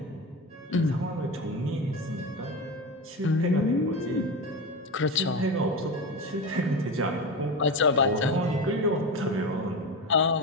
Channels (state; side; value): normal; both; correlation 0.21